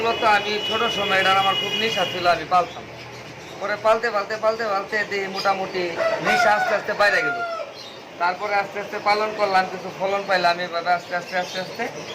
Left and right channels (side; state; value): both; identical; correlation 1.00